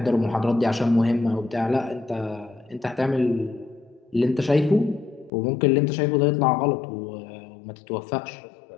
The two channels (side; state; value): right; drops out; at 5.3 s